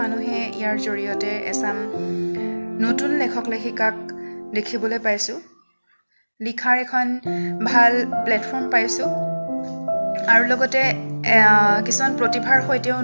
মানুহে ইয়াৰ জৰিয়তে এচাম নতুন লেখক লেখিকাক দেখিবলৈ পাইছোঁ, লিখাৰ এখন ভাল প্লেটফৰ্ম পাইছোঁ আৰু লগতে কিছুমান প্ৰতিভাৰ সৈতেও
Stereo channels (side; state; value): both; inverted; correlation -1.00